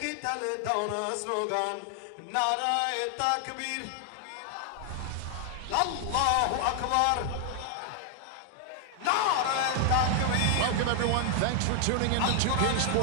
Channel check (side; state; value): both; different; correlation 0.00